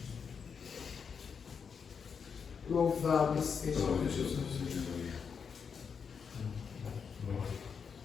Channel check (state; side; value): quieter; right; 6.3 dB